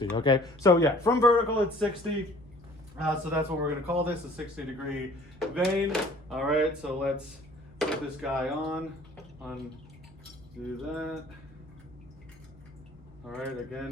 okay? So yeah, from vertical, it's 60. So that's what we're going to call this, a 60-degree vein. All right, so let's put this guy on, do that. All right,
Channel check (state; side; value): normal; both; correlation 0.53